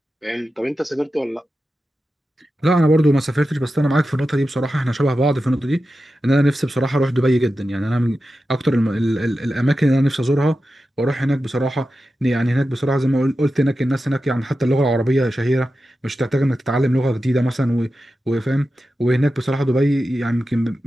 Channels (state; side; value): normal; both; correlation 0.92